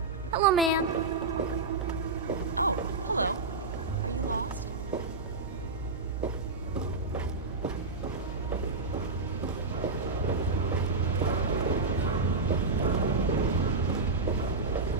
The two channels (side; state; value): left; quieter; 3.8 dB